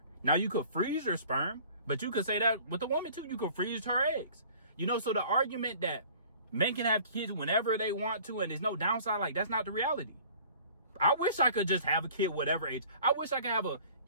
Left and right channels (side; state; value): both; inverted; correlation -0.49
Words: Now, you could freeze your sperm, but you could say that with a woman too. You could freeze her eggs. You know, so the argument that men can have kids whenever they want to and there's no downside, like, that's not the reality. I wish I could just have a kid whatever age. I wish I could have a